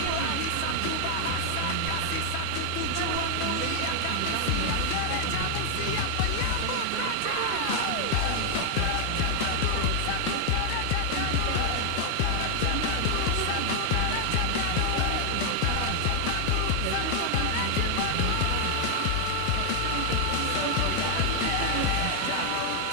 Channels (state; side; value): different; both; correlation 0.00